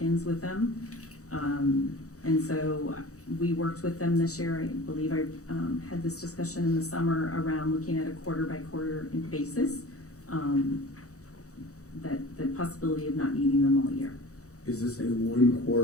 with them. And so we worked with them this year. I believe I had this discussion in the summer around looking at a quarter by quarter basis, that the possibility of not needing them all year. Is this a 1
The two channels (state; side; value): late; right; 0.65 ms